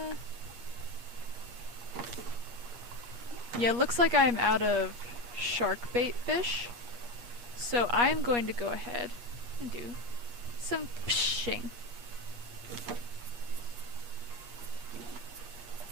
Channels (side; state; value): left; late; 8.4 ms